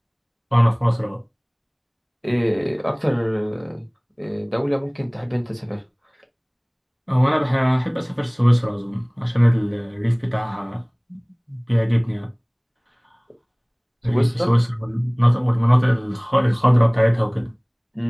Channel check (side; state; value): both; identical; correlation 1.00